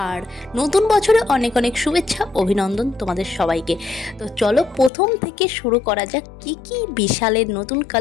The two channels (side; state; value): right; drops out; at 4.9 s